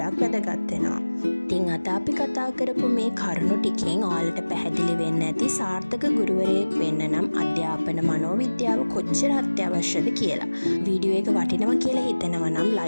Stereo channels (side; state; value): both; inverted; correlation -1.00